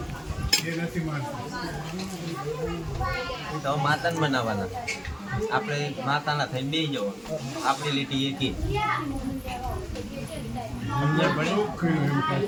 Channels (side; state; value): both; identical; correlation 1.00